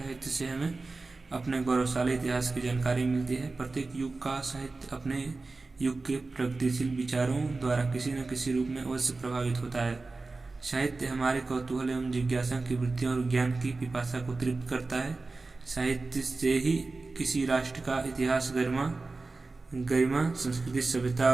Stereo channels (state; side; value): quieter; left; 3.6 dB